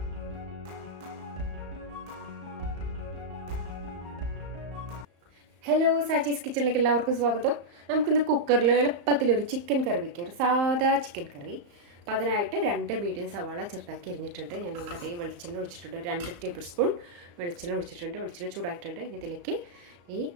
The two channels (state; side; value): late; left; 35 ms